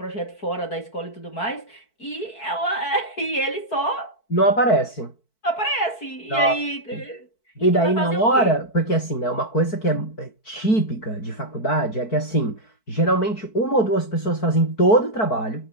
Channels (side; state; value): right; late; 4.6 ms